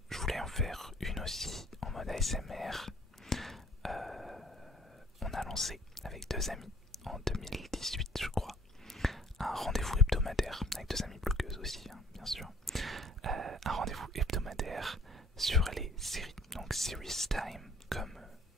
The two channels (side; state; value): both; normal; correlation 0.56